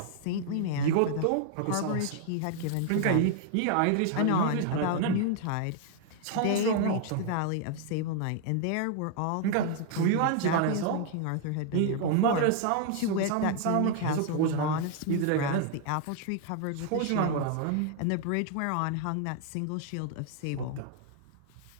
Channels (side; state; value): both; different; correlation 0.00